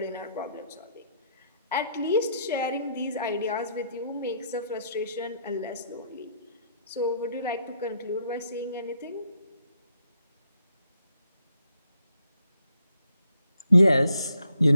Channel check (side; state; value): both; inverted; correlation -0.73